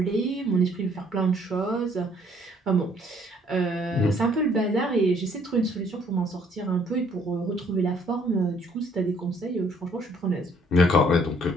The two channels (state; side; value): normal; both; correlation 0.63